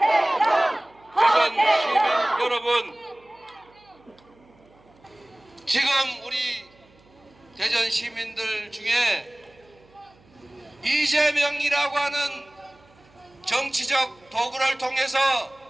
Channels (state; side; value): noise; right; hum, 30 dB below the sound